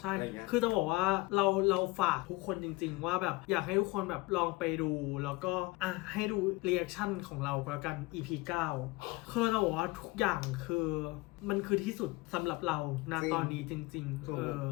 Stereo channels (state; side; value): quieter; right; 22.7 dB